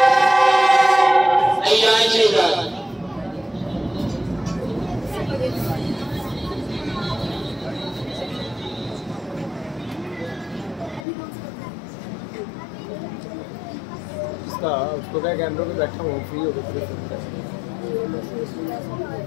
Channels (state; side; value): drops out; right; at 11.1 s